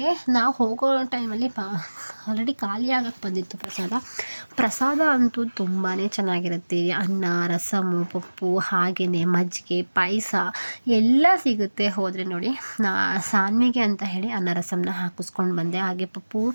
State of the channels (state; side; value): inverted; both; correlation -1.00